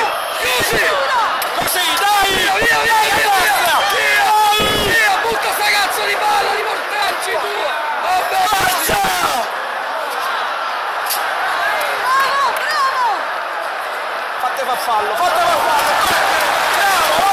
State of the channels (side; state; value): both; identical; correlation 1.00